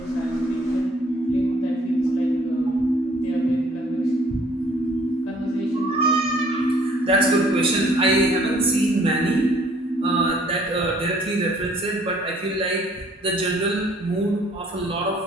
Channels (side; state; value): both; normal; correlation 0.59